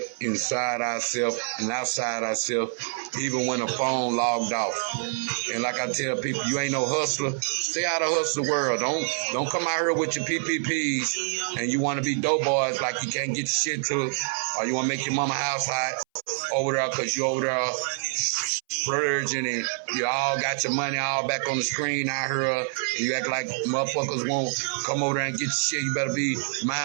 inside ourselves and outside ourselves, even when the phone logged off. And like I tell people, you ain't no hustler. Stay out of hustle world. Don't come out here with your PPPs and you want to be dope boys like you can't get your shit to it, or you want to make your mama house hot over there because you over there splurging and you all got your money all back on the screen out here, and you act like motherfuckers won't come over there and get your shit. You better be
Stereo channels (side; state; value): left; silent; 61 dB below the other